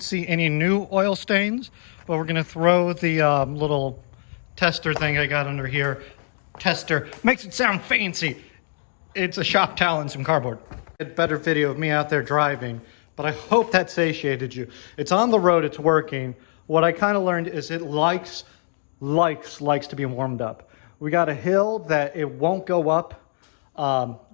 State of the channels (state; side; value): silent; right; 63 dB below the other